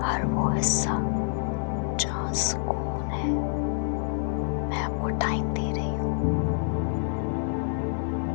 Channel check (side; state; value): right; silent; 60 dB below the other